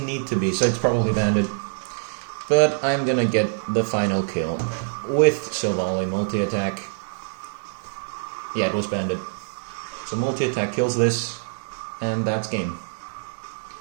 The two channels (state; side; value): silent; left; digital silence